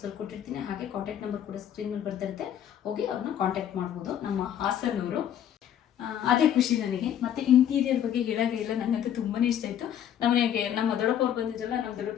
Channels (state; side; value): quieter; right; 10.0 dB